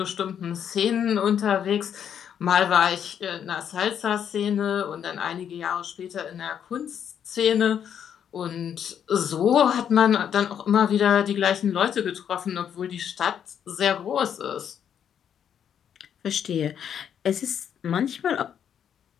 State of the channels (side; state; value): right; quieter; 8.7 dB